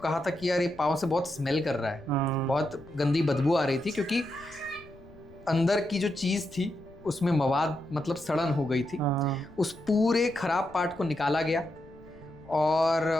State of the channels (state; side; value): noise; left; rumble, 23 dB below the sound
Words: था कि यार ये पाँव से बहुत स्मेल कर रहा है, बहुत गंदी बदबू आ रही थी क्योंकि अंदर की जो चीज़ थी उसमें मवाद मतलब सड़न हो गई थी। उस पूरे खराब पार्ट को निकाला गया